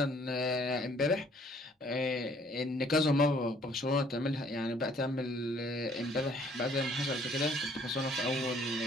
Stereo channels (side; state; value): both; normal; correlation 0.60